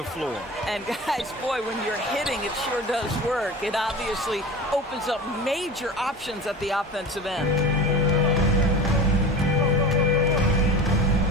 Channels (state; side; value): normal; both; correlation 0.33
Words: floor. And guys, boy, when you're hitting, it sure does work. It obviously opens up major options at the offensive end.